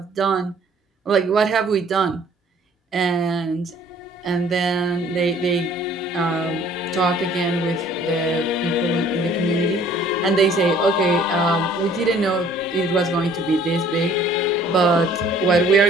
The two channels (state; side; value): normal; both; correlation 0.56